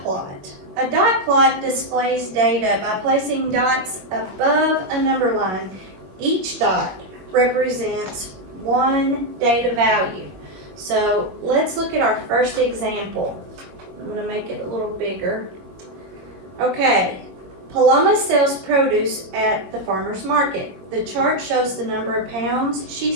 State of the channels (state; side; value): late; left; 22 ms